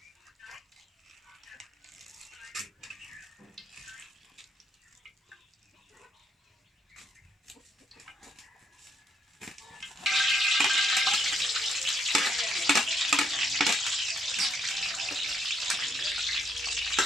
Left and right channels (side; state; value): both; normal; correlation 0.74